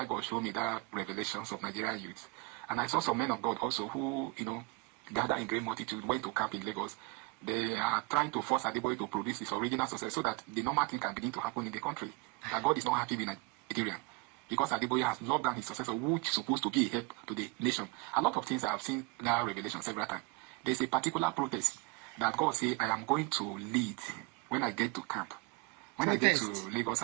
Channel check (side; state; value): left; quieter; 25.1 dB